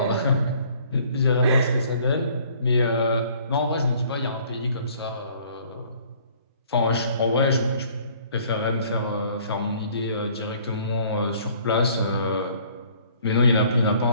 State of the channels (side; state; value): both; inverted; correlation -0.57